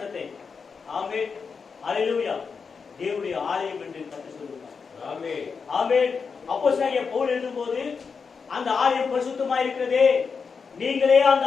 ஆமென், ஹalleluya, தேவனுடைய ஆலயம் என்று கர்த்தர் சொல்கிறார். ஆமென், ஆமென். அப்போஸ்தலனாகிய பவுல் எழுதும்போது அந்த ஆலயம் பரிசுத்தமாக இருக்கிறதே, நீங்களே அந்த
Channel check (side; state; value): right; quieter; 5.5 dB